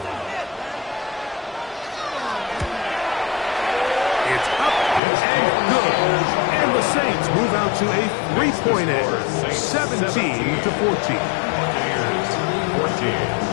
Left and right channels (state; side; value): drops out; right; at 5.0 s